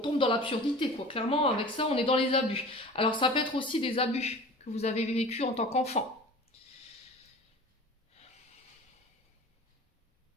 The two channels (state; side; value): normal; both; correlation 0.40